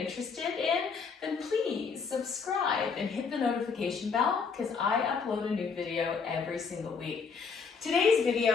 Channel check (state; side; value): quieter; right; 5.5 dB